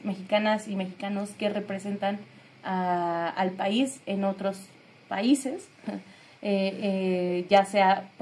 mexicanas y mexicanos que representan al país en otros países, ya sea,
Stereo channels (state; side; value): identical; both; correlation 1.00